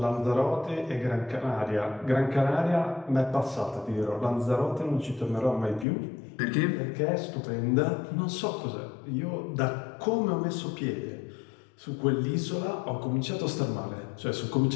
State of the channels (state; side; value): drops out; right; at 5.9 s